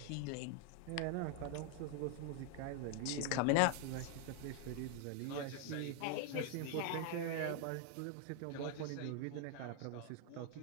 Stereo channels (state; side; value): different; both; correlation 0.01